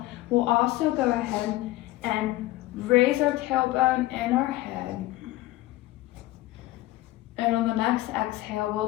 we'll also go ahead and raise our tailbone and our head. And on the next exhale,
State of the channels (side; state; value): right; quieter; 17.1 dB